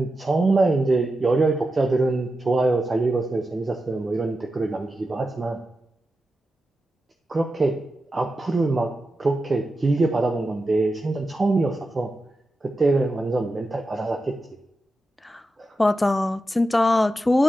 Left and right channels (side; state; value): both; normal; correlation 0.90